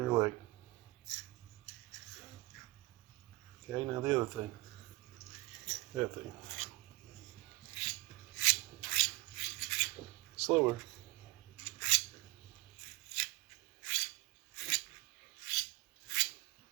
your leg. Okay, now the other thing. That thing. Slower.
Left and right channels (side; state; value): left; quieter; 21.9 dB